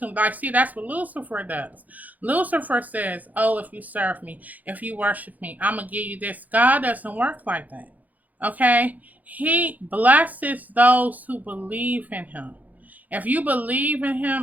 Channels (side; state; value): left; late; 0.080 ms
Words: them. Like, see, that's what Lucifer does. Lucifer says, oh, if you serve me, if you worship me, I'm going to give you this. God doesn't work like that. Okay, he blesses those who believe in him. If you believe in